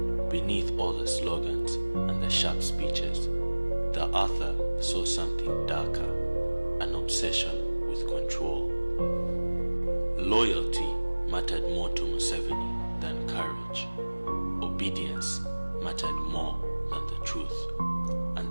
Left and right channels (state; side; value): inverted; both; correlation -1.00